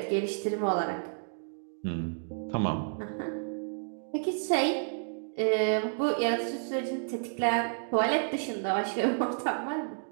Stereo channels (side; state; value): left; silent; digital silence